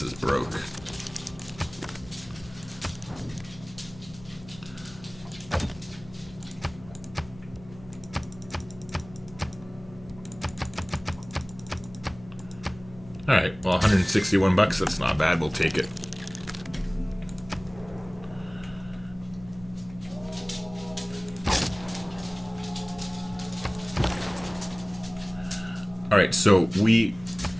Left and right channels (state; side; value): noise; left; hum, 19 dB below the sound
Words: is broke. Alright, well, 161 bucks, that's not bad, we'll take it. Alright, so we